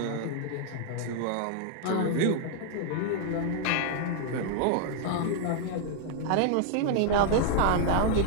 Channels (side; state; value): both; different; correlation -0.01